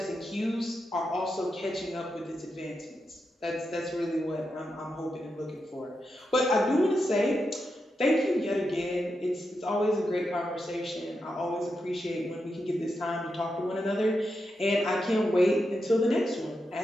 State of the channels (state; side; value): normal; both; correlation 0.86